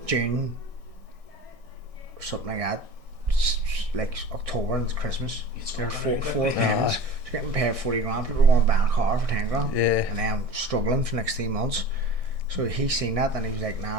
June, or something like that. Like October and it's Christmas. There's four payments. So you're getting paid 40 grand. People are going to buy a car for 10 grand. Yeah. And then I'm struggling for the next 3 months. So he seen that and he was like,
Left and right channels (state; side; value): late; left; 1.6 ms